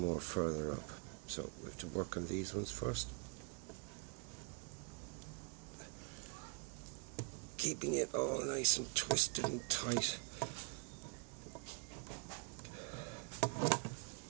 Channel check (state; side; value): quieter; left; 33.1 dB